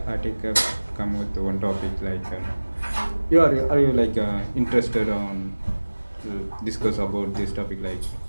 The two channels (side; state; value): both; inverted; correlation -1.00